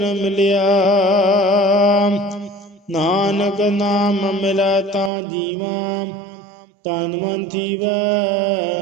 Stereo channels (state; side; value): drops out; left; at 5.1 s